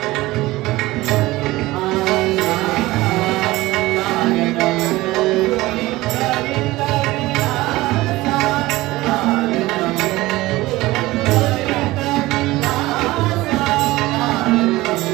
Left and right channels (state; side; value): quieter; left; 18.8 dB